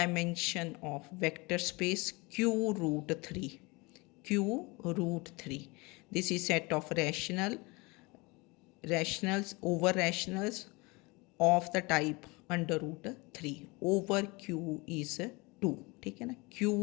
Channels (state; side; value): quieter; right; 25.8 dB